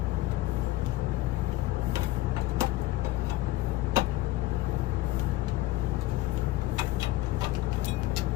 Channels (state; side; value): quieter; right; 17.0 dB